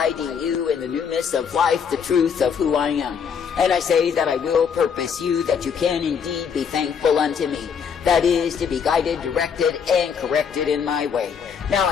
you in the newness of life, the truth of who I am. And I say that I will purpose you that you can indeed be thankful unto me. That is, to be guided, directed, and corrected in my way. Now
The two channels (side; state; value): right; quieter; 6.9 dB